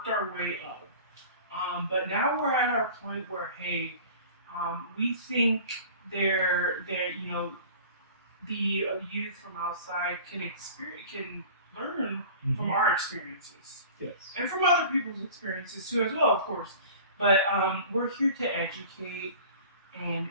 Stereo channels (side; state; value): both; inverted; correlation -0.42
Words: our way up. But now we're at our point where, we think the youth from outside can learn from our experiences. Yes. And from other people's experiences too, as well, of course. But we're here to educate